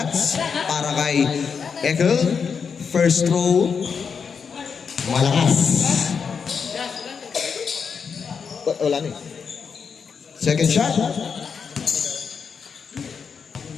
para kay Egel. First throw, malakas. Wala na eh. Second shot.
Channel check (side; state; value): right; quieter; 6.1 dB